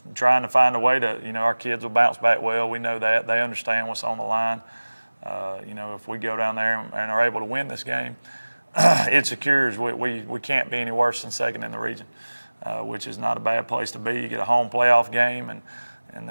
trying to find a way to. You know, our kids will bounce back well. We know that. They understand what's on the line. You know, if we go down there and are able to win this game, it secures we can't be any worse than second in the region, which is not a bad place to be. You get a home playoff game, and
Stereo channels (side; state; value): both; inverted; correlation -1.00